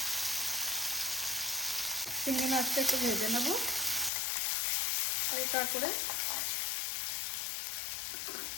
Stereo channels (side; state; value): right; drops out; at 4.1 s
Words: চিংড়ি মাছটা একটু ভেজে নেব হালকা করে।